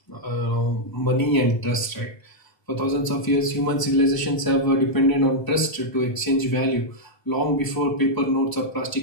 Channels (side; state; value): right; late; 1.0 ms